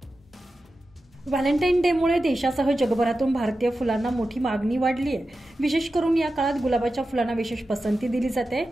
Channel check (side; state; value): both; normal; correlation 0.92